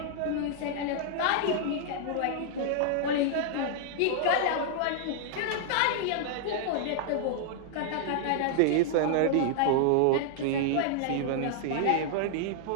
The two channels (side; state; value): both; different; correlation -0.01